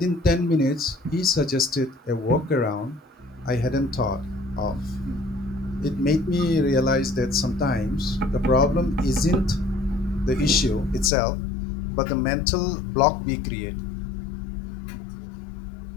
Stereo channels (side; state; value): right; drops out; at 11.1 s